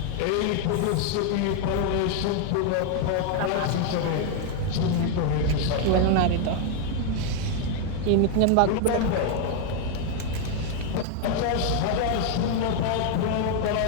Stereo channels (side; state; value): both; different; correlation 0.00